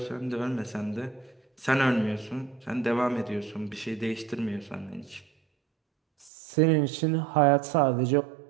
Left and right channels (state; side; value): drops out; left; at 6.3 s